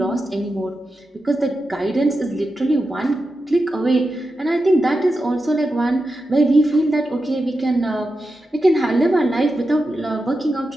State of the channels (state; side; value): normal; both; correlation 0.90